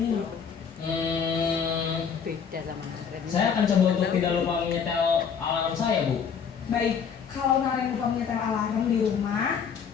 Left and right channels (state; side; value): quieter; right; 6.9 dB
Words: Beda sama Naren. Saya akan coba untuk tidak lupa menyetel alarm saya, Bu. Baik, kalau Naren lupa menyetel alarm di rumah,